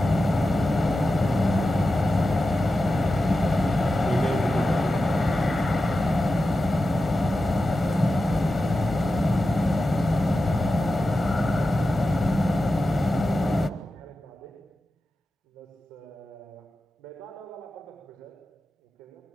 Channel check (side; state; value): both; normal; correlation 0.92